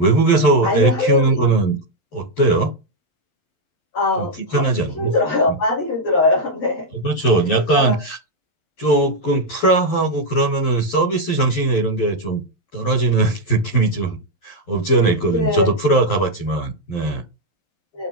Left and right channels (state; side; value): late; right; 11 ms